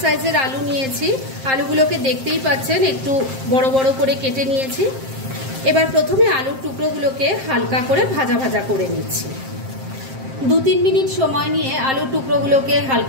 সাইজের আলু নিয়েছি। আলুগুলোকে দেখতেই পাচ্ছেন একটু বড় বড় করে কেটে নিয়েছি। এবার প্রথমে আলুর টুকরোগুলোকে হালকা করে ভাজা ভাজা করে নিচ্ছি। 2-3 মিনিট সময় নিয়ে আলুর টুকরোগুলোকে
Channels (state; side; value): late; left; 7.6 ms